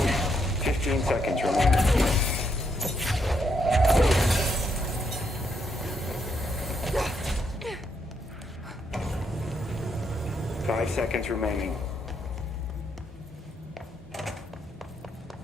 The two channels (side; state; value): both; normal; correlation 0.77